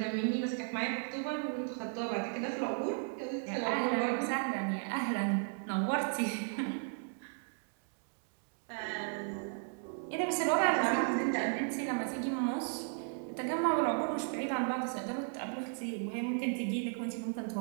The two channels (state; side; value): silent; left; 54 dB below the other